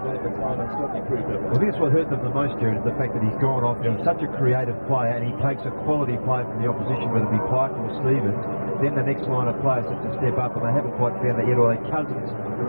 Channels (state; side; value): inverted; both; correlation -1.00